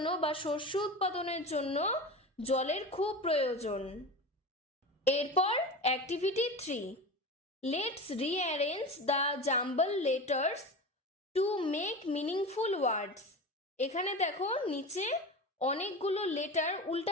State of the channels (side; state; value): both; normal; correlation 0.28